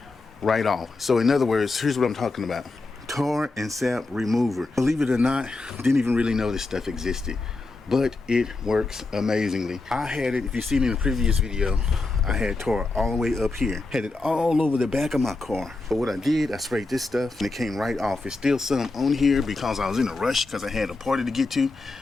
right off. So in other words, here's what I'm talking about: tar and sap remover. Believe it or not, didn't even really know this stuff existed, but it works amazingly. I had it, if you've seen in the previous video, I had tar all the way up here, had it all over the back of my car. But what I did, I sprayed this stuff and it came right off. It's still some on here because I was in a rush because I had a party to get to,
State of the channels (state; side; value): quieter; right; 3.4 dB